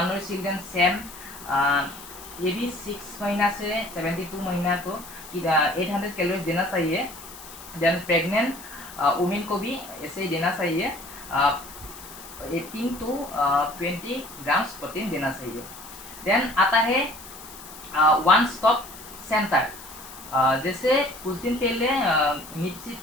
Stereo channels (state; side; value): noise; left; hiss, 16 dB below the sound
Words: चिल्ड्रन सेम, ये भी 6 महीना से 72 महीना को 800 कैलोरीज देना चाहिए। देन प्रेग्नेंट वुमेन को भी ऐसे ही देना चाहिए, 18 to 20 ग्राम्स प्रोटीन देना चाहिए। देन आता है वन स्टॉप सेंटर। जैसे कुछ दिन पहले निप्सिट